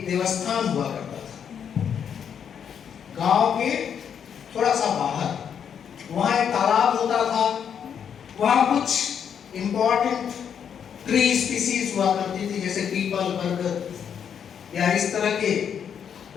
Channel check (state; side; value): quieter; right; 7.9 dB